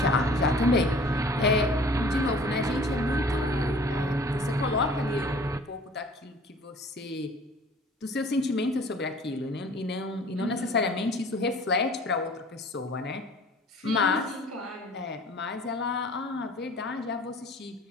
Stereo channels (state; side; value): normal; both; correlation 0.48